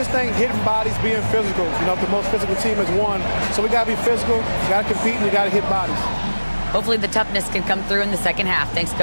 think hitting bodies, being physical. You know, the most physical team has won. So we got to be physical, we got to compete, and we got to hit bodies. Hopefully the toughness can come through in the second half. Thanks,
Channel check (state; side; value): inverted; both; correlation -1.00